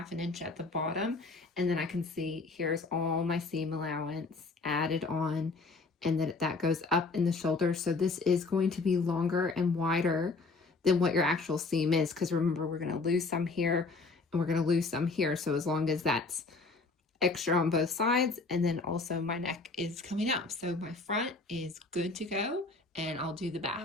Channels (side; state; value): right; quieter; 3.8 dB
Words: inch at the bottom, and then I can see here's all my seam allowance added on, and then that goes up in the shoulder. So this is going to be longer and wider than what your actual seam is, because remember, we're going to lose some here and we're going to lose some here. So as long as that's extra on both sides, and then also my neck is coming up. So my front is good to go, and I'll do the back.